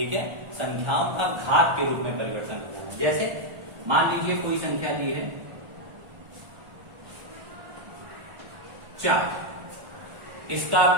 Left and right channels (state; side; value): late; left; 1.4 ms